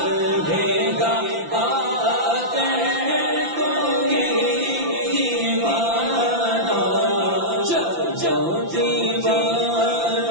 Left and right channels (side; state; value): left; late; 5.9 ms